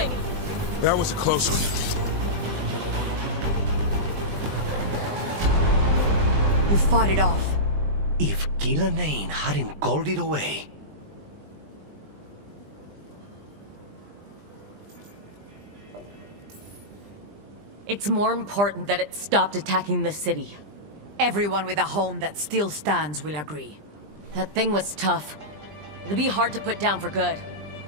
That was a close one. You fought it off. If Gillanane hadn't called it away... It's more important that it stopped attacking the city. Everyone with a home that still stands will agree. That thing was tough. It'll be hard to put down for good.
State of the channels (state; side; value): late; left; 20 ms